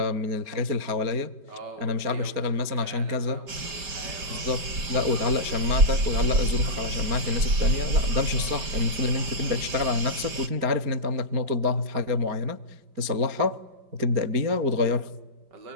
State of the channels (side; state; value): left; late; 5.0 ms